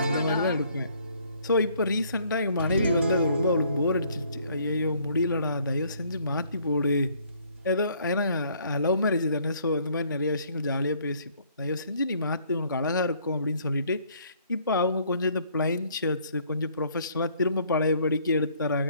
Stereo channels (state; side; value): inverted; both; correlation -0.63